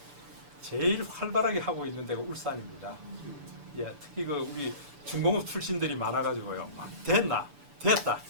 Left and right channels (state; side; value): late; left; 6.9 ms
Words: 제일 활발하게 하고 있는 데가 울산입니다. 예, 특히 그 우리 중공업 출신들이 많아가지고요. 됐다.